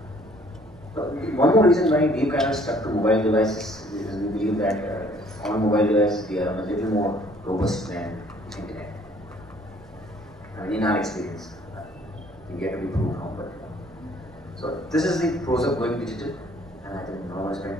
One more reason why we kind of stuck to mobile devices is we believe that on mobile devices they are a little more robust than internet. I mean, in our experience, we get to be proved wrong, but so this is the pros of going digital, and I think no one spend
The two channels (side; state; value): both; normal; correlation 0.59